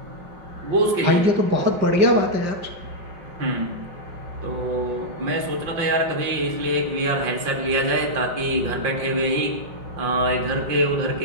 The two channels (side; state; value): left; late; 5.8 ms